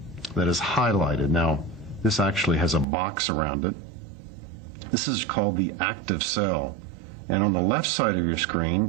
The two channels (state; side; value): drops out; left; at 2.9 s